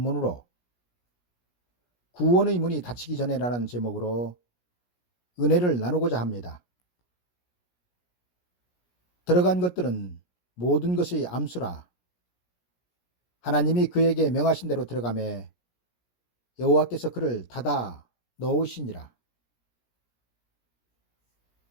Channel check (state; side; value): late; right; 17 ms